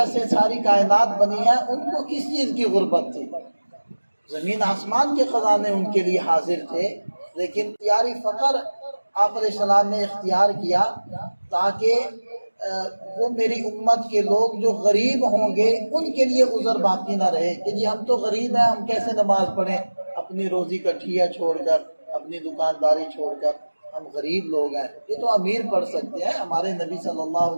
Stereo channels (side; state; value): both; inverted; correlation -1.00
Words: سے ساری کائنات بنی ہے ان کو کس چیز کی غربت تھی؟ زمین آسمان کے خزانے ان کے لیے حاضر تھے، لیکن اختیاری فقر آپ علیہ السلام نے اختیار کیا تاکہ وہ میری امت کے لوگ جو غریب ہوں گے ان کے لیے عذر باقی نہ رہے کہ جی ہم تو غریب ہیں، ہم کیسے نماز پڑھیں، اپنی روزی کا ٹھیا چھوڑ کر، اپنی دکانداری چھوڑ کر، ہم غریب لوگ ہیں، یہ تو امیر پڑھ سکتے ہیں۔ ہمارے نبی صلی اللہ